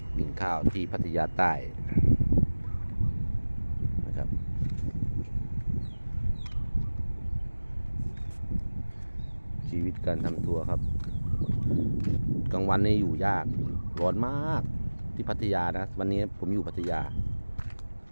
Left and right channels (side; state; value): both; inverted; correlation -1.00